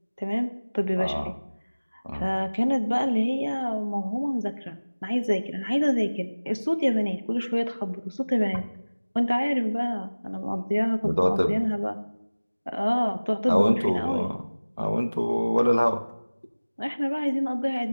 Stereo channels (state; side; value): inverted; both; correlation -1.00